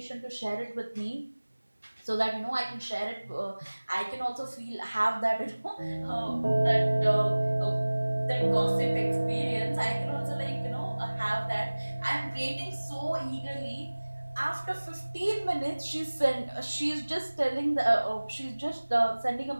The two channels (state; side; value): inverted; both; correlation -1.00